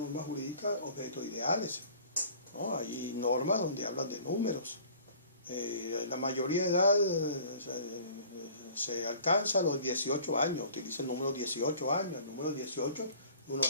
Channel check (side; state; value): both; inverted; correlation -0.49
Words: jurídicas objetos ideales. ¿no? Hay normas donde hablan de números. La mayoría de edad se alcanza a los 18 años, utiliza el número 18 años, el número 18 es un